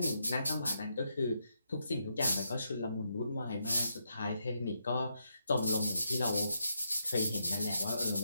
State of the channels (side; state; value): both; inverted; correlation -0.80